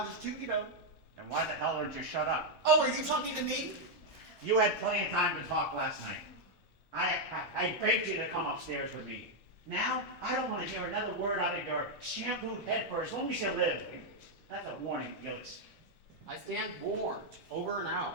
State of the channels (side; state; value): both; normal; correlation -0.01